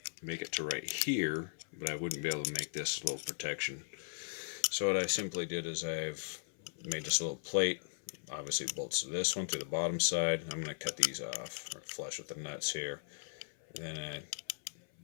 make it to right here, but I wouldn't be able to make this little protection. So what I simply did is I've made this little plate. Obviously it bolts to this one through the bottom side. I'm going to cut these off, or flush with the nuts here. And then I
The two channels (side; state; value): right; silent; 53 dB below the other